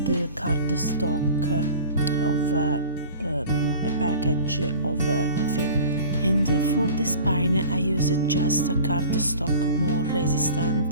cardstock of a package of a film. And for the spine I used just a cardstock more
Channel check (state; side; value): inverted; both; correlation -0.42